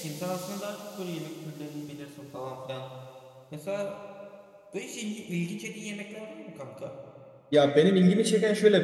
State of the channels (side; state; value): both; identical; correlation 1.00